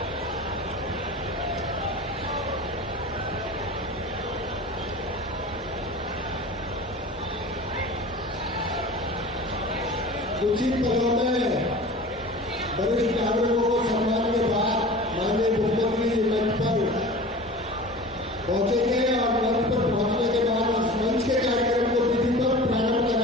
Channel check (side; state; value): both; normal; correlation 0.38